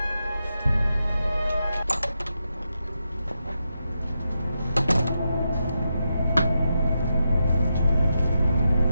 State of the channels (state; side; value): inverted; both; correlation -0.86